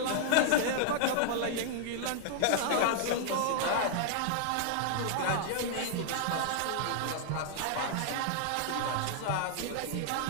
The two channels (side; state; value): both; different; correlation 0.00